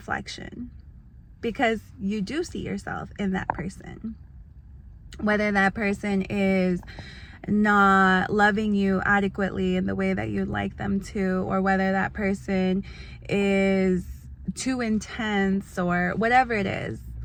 because you do see yourself in that person. Whether that person is not loving you adequately in the way that you'd like them to, or whether that person is too intense, or whatever it is,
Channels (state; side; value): identical; both; correlation 1.00